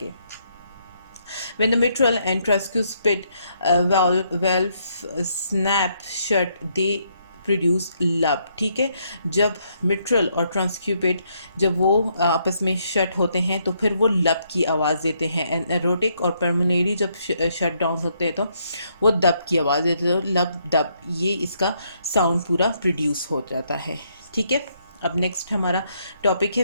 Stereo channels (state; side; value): inverted; both; correlation -0.73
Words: When the mitral and tricuspid valve snap shut, they produce लब। ठीक है, जब मिट्रल और ट्रांसक्यूपिड जब वो आपस में शट होते हैं तो फिर वो लब की आवाज़ देते हैं। एंड एरोटिक और पर्मनेरी जब शट डाउन होते हैं तो वो दब की आवाज़ देते हैं। तो लब दब, ये इसका साउंड पूरा प्रोड्यूस हो जाता है। ठीक है, अब नेक्स्ट हमारा टॉपिक है